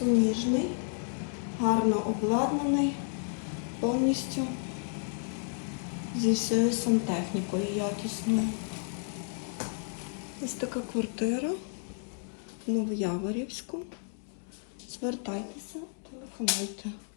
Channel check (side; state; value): right; silent; 57 dB below the other